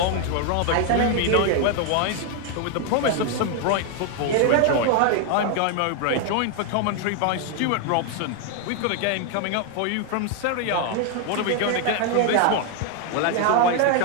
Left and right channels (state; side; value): different; both; correlation 0.01